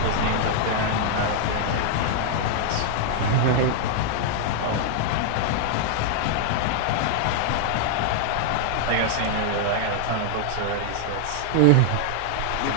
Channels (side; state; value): both; different; correlation -0.01